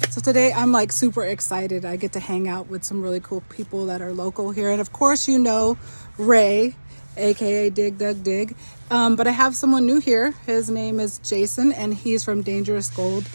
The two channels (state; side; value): inverted; both; correlation -1.00